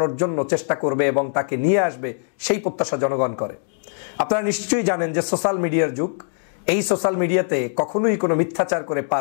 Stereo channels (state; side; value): silent; right; digital silence